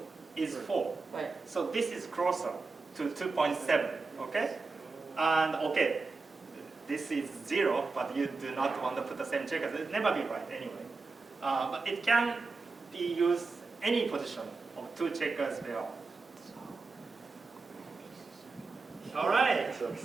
is 4. Right. So this is closer to 2.7, okay? And okay, this is 0, but you do not want to put the same checkers. It'll never be right anyway. But it can be used any position of two checkers there. All right,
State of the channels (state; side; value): quieter; left; 4.0 dB